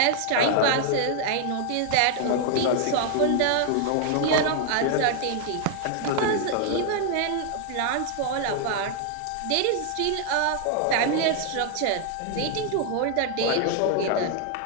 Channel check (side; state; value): both; different; correlation 0.00